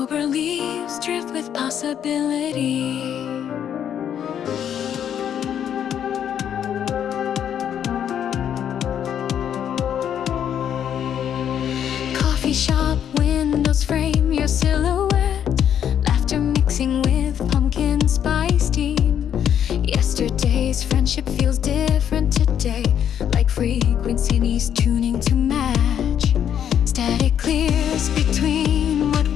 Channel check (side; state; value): right; quieter; 9.3 dB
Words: leaves drift with possibility. Coffee shop windows frame your silhouette, laughter mixing with pumpkin spice steam. Yesterday's friendship feels different today, like frequencies tuning to match. Static clears between what